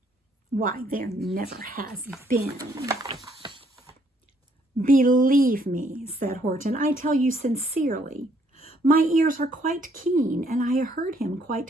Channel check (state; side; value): normal; both; correlation 0.67